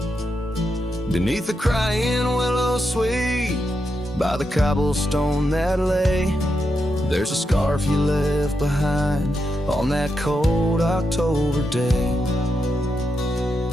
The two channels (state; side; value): normal; both; correlation 0.85